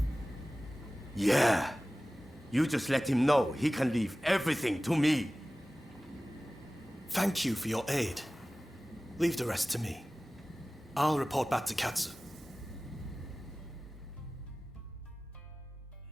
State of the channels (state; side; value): normal; both; correlation 0.97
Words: Yeah. You just let him know he can leave everything to me. Thank you for your aid. Leave the rest to me. I'll report back to Katsu.